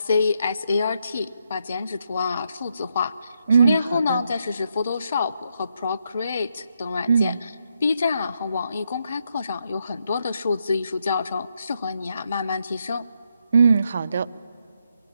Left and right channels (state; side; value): inverted; both; correlation -0.79